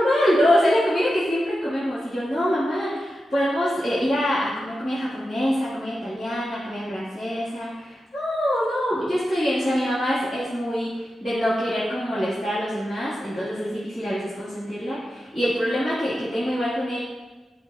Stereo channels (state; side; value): normal; both; correlation 0.91